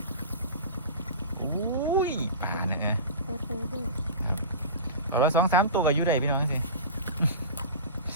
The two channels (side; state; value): both; inverted; correlation -0.31